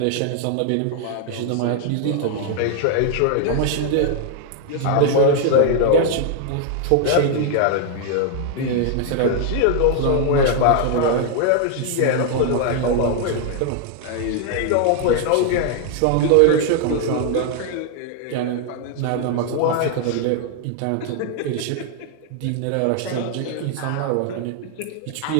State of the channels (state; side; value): different; both; correlation 0.00